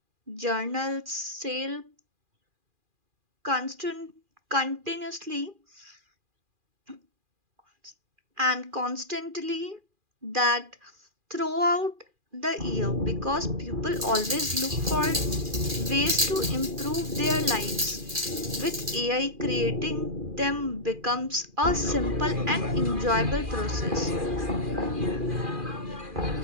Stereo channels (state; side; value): late; left; 2.4 ms